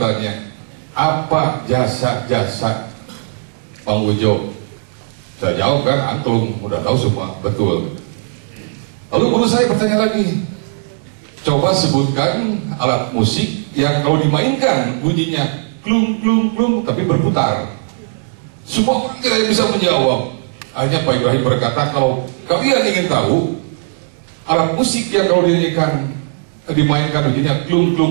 apa jasa-jasa Bang Ujo? Saya jawab kan, antum udah tahu semua, betul. Lalu guru saya bertanya lagi, coba sebutkan alat musik yang kalau dimainkan bunyinya klung klung klung tapi berputar. Semua orang tidak bisa menjawab. Hanya Pak Ibrahim berkata, kalau kalian ingin tahu alat musik yang kalau dimainkan bunyinya klung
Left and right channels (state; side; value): silent; left; 68 dB below the other